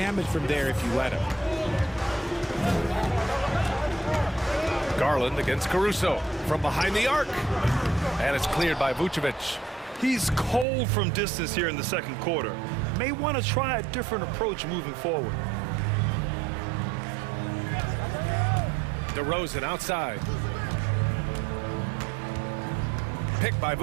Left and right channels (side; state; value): left; drops out; at 10.7 s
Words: from there if you let him. Garland against Caruso from behind the arc. And it's cleared by Vucevic. He's cold from distance here in the second quarter. May want to try a different approach moving forward. DeRozan outside. Picked by